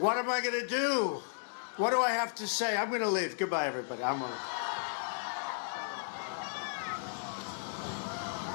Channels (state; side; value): silent; right; digital silence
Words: am I going to do? What do I have to say? I'm going to leave. Goodbye, everybody. I'm going to leave.